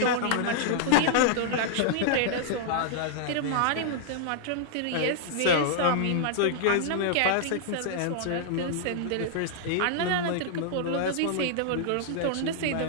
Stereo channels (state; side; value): different; both; correlation -0.01